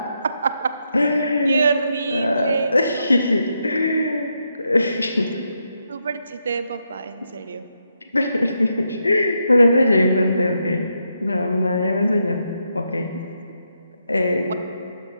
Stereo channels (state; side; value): inverted; both; correlation -0.82